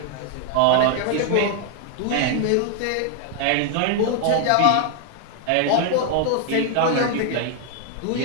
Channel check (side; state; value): both; different; correlation 0.00